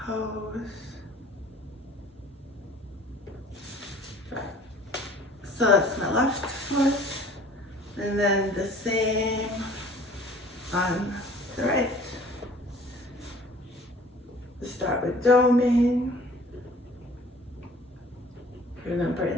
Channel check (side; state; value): both; normal; correlation 0.50